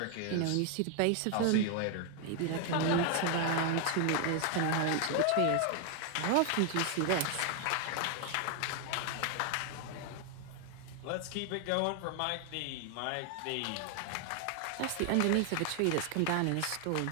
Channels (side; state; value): both; different; correlation 0.00